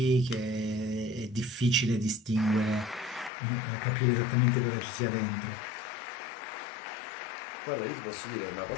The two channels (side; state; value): right; drops out; at 3.3 s